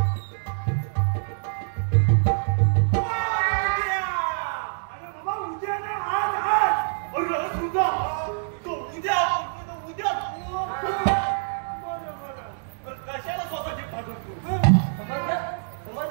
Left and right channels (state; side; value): silent; left; digital silence